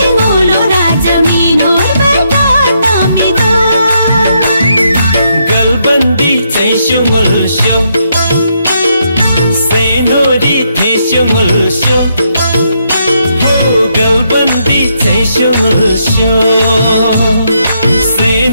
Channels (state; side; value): inverted; both; correlation -0.77